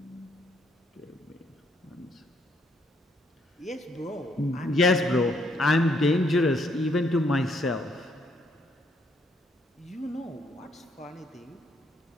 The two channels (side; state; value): both; normal; correlation 0.70